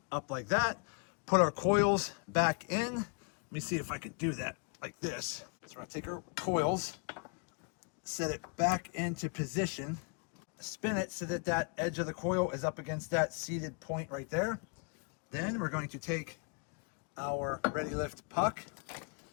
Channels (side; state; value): right; quieter; 36.7 dB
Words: up like that, put our coils back in. Let me see if I can do that like this. So we're gonna take our coils, set it back into position, spin it so that that edge of the coil is up against that seated point right there. Then we're going to take our ReadyLift puck,